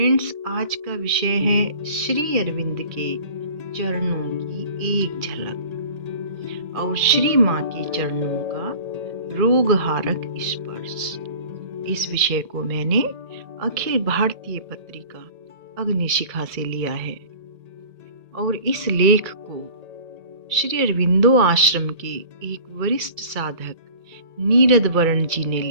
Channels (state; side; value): late; left; 2.3 ms